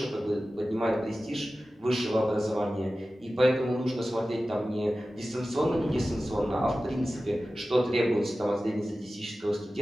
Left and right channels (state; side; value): normal; both; correlation 0.95